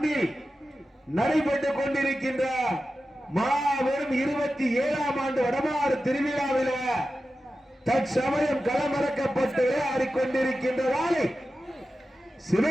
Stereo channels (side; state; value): both; normal; correlation 0.93